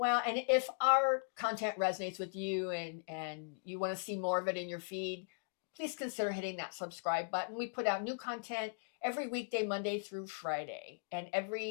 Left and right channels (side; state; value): right; silent; digital silence